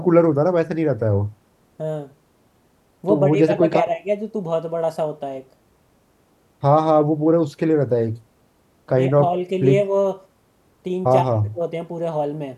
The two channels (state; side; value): identical; both; correlation 1.00